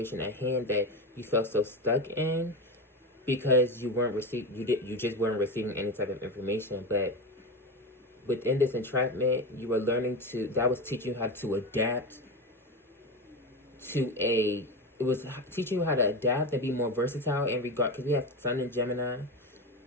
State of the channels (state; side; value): normal; both; correlation 0.20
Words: at hand that you felt so stuck in because you just weren't receiving any type of information. But within this entrapment, you were learning that was teaching you how to adapt it was teaching you how to adapt and be more versatile in regard, because we have Sun in Gemini